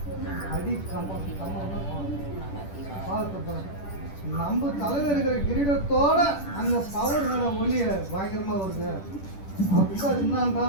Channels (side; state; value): right; late; 10 ms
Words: அடி கம்பம் பார்த்து நம்ம தலையில் இருக்கிற கிரீடத்தோட அந்த பவர் மேலே ஒளிய பயங்கரமாக வருது அப்படின்னா அது